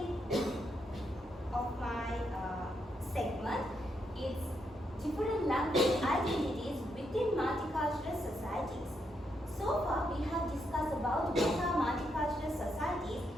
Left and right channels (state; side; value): normal; both; correlation 0.79